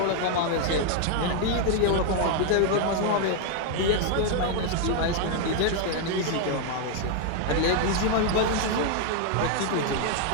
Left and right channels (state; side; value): different; both; correlation 0.00